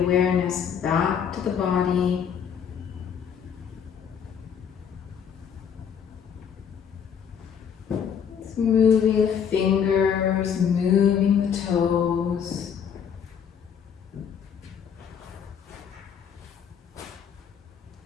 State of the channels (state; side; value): quieter; right; 7.7 dB